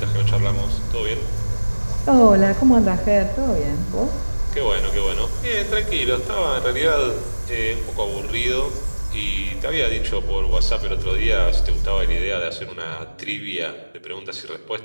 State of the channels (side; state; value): both; inverted; correlation -1.00